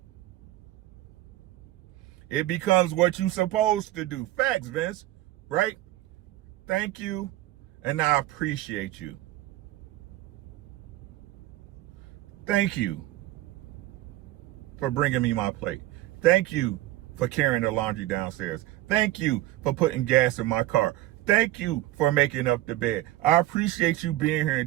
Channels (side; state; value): left; quieter; 16.1 dB